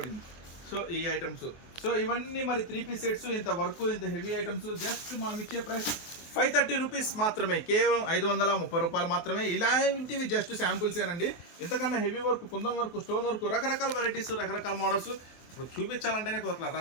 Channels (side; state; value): right; late; 24 ms